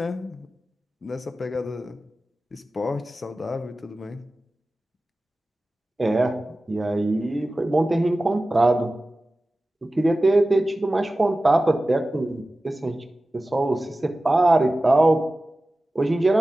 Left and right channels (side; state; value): both; normal; correlation 0.96